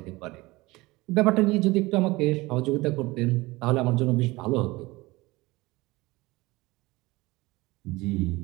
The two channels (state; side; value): quieter; left; 21.4 dB